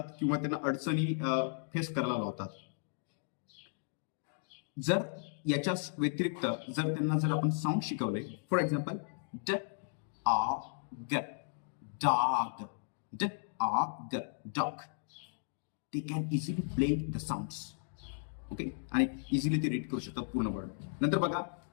किंवा त्यांना अडचणी फेस करायला लावतात. जर याच्या व्यतिरिक्त जर आपण साऊंड शिकवले, for example dog, dog, dog, dog, they can easily blend the sounds. Okay, आणि इझिली ते रीड करू शकतात पूर्ण वर्ड. नंतर बघा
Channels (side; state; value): right; silent; digital silence